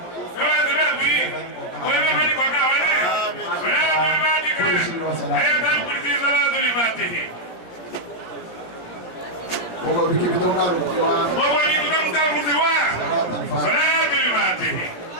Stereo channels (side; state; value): right; late; 17 ms